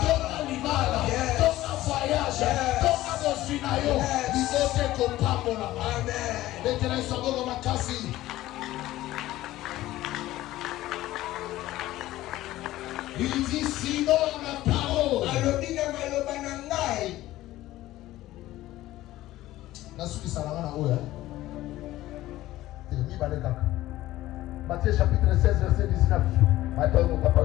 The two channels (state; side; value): quieter; right; 15.8 dB